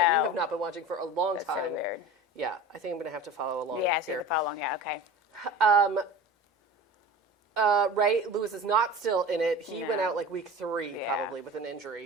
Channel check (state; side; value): normal; both; correlation 0.35